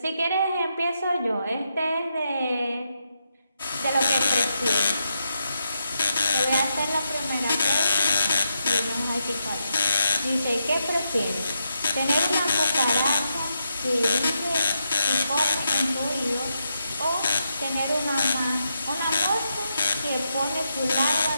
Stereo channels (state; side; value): inverted; both; correlation -0.83